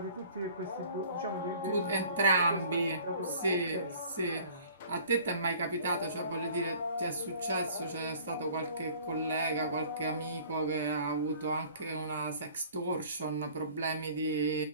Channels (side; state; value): both; inverted; correlation -0.51